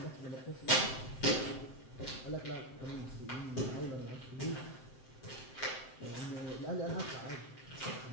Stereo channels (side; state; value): right; late; 7.7 ms